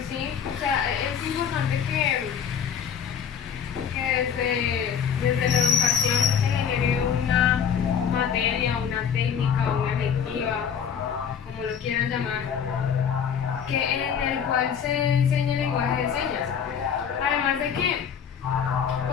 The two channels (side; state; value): right; quieter; 7.7 dB